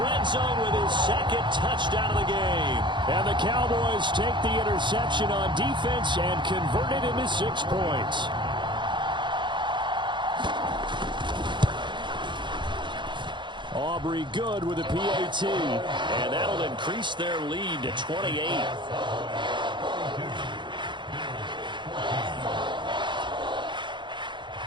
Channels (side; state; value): left; late; 0.23 ms